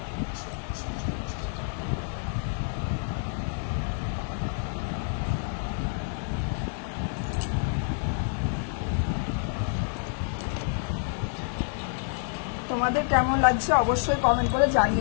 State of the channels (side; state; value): right; silent; digital silence